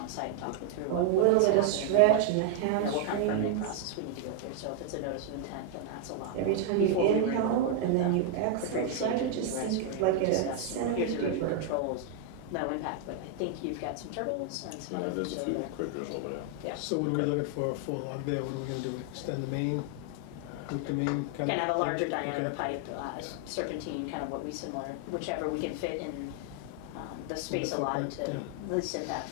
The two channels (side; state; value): both; different; correlation 0.00